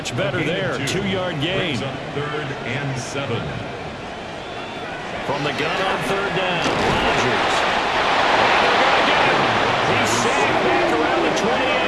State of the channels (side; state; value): both; identical; correlation 1.00